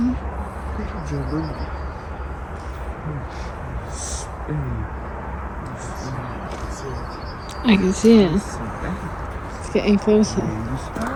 bedroom. I can see it. It's getting closer.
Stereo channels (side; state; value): both; identical; correlation 1.00